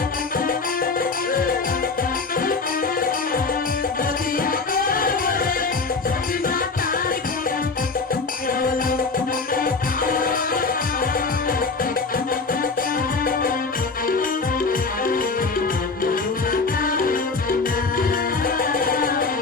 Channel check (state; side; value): quieter; right; 4.2 dB